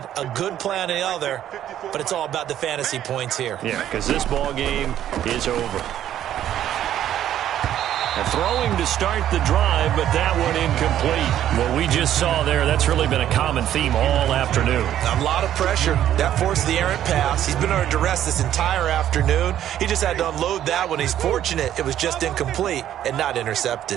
a good play on the other, but it's all about the fantasy points here. Yeah, because this ball game is over. Throwing to start the drive, but that one incomplete. What we just saw there, that's really been a common theme all afternoon. A lot of pressure. That forced the errant pass. He's been under duress this entire afternoon. He just had to unload that one. He's fortunate it was just incomplete and not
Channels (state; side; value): quieter; left; 11.3 dB